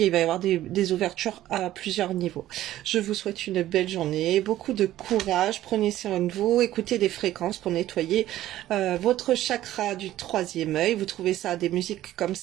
et il va y avoir des ouvertures à plusieurs niveaux. Je vous souhaite une belle journée, beaucoup de courage, prenez soin de vous, écoutez des fréquences pour nettoyer votre chakra du troisième œil. Vous trouvez ça, des musiques comme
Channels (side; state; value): left; quieter; 14.0 dB